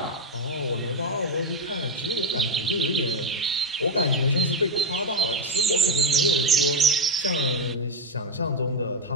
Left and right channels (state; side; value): normal; both; correlation 0.09